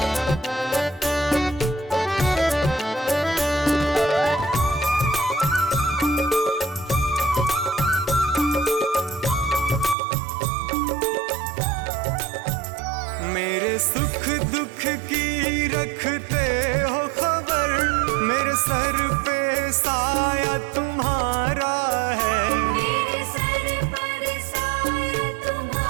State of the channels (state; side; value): drops out; left; at 10.0 s